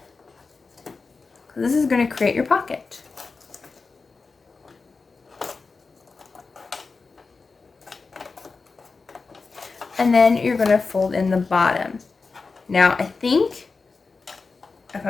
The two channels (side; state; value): right; quieter; 4.3 dB